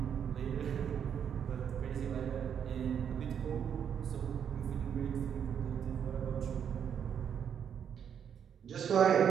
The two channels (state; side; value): quieter; left; 8.2 dB